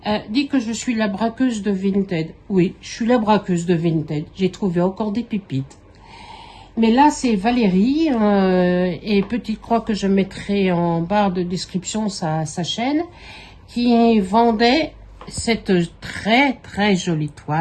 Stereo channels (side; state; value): both; identical; correlation 1.00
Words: dit que je suis la braqueuse de Vinted. Oui, je suis la braqueuse de Vinted. J'ai trouvé encore des pépites. Mais là, c'est Valérie, et petite croix que je mettrai en barre de description sa chaîne, qui vendait cette très très jolie